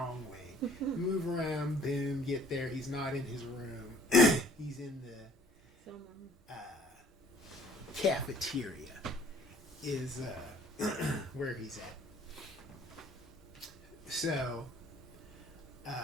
wing. Move around, boom, get there. He's not in his room. He's in the cafeteria is where he's at. So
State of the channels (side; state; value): both; normal; correlation 0.56